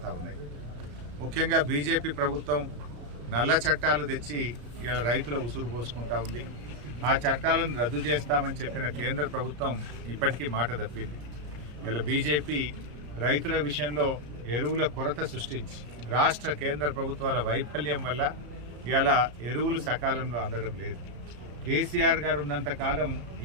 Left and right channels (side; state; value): left; late; 34 ms